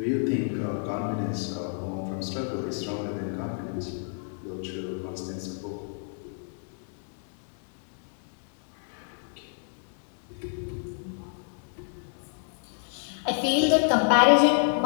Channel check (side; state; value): right; silent; 58 dB below the other